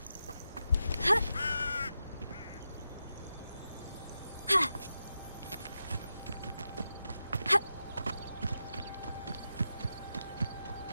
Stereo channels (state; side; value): inverted; both; correlation -0.88